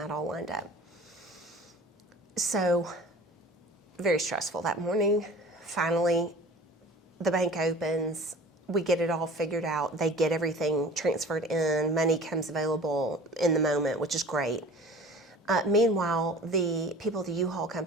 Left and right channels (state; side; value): normal; both; correlation 0.42